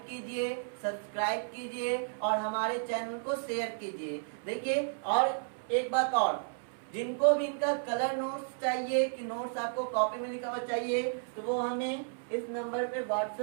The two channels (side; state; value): left; silent; 56 dB below the other